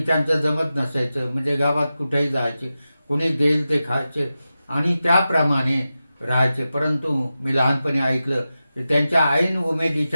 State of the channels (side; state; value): both; inverted; correlation -0.93